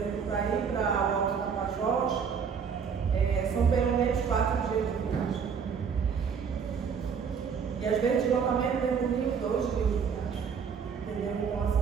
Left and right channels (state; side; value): quieter; left; 6.5 dB